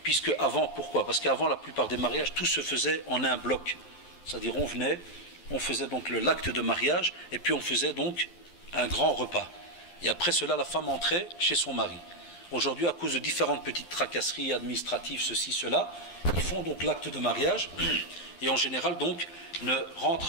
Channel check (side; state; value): right; late; 12 ms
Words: Puisque avant, pourquoi? Parce qu'avant, la plupart des mariages, tout se faisait en un bloc. C'est-à-dire, on faisait donc l'acte de mariage, et puis on faisait donc un grand repas. Et après cela, la femme entrait chez son mari. Aujourd'hui, à cause de différentes petites tracasseries administratives, ceci, cela, ils font donc l'acte de mariage, et en général, donc,